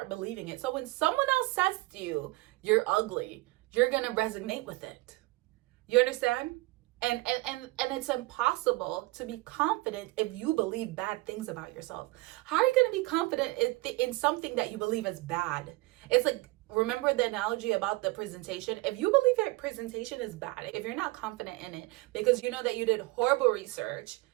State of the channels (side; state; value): left; quieter; 21.7 dB